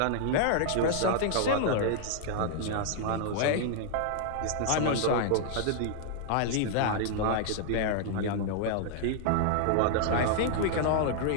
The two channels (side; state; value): both; different; correlation 0.00